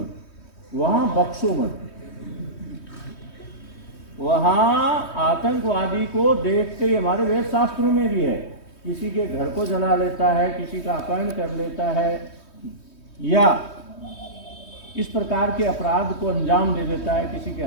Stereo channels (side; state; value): right; late; 3.2 ms